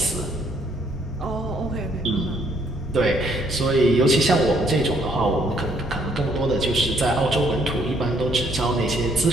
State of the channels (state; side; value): normal; both; correlation 0.67